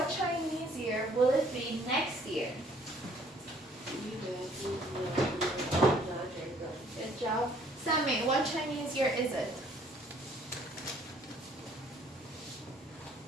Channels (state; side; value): normal; both; correlation 0.60